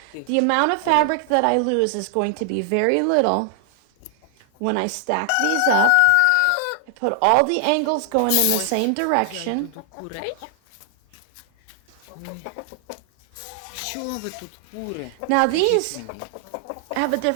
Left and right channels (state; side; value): different; both; correlation 0.00